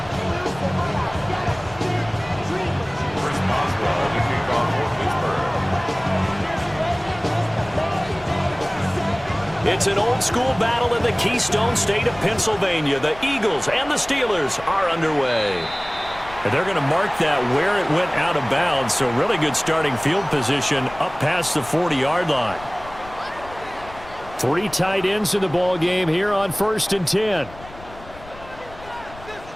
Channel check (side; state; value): left; noise; rumble, 19 dB below the sound